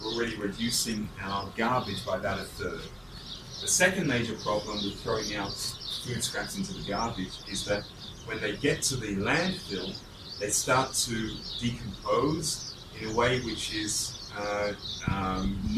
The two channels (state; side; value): identical; both; correlation 1.00